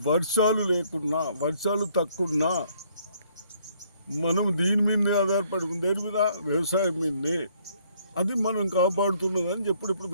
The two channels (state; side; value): inverted; both; correlation -0.66